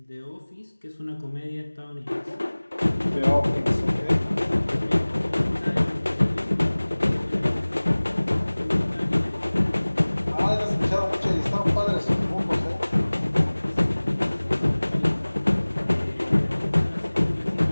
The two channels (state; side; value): inverted; both; correlation -1.00